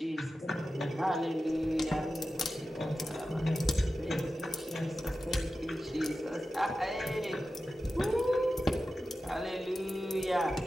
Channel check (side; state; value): both; normal; correlation 0.93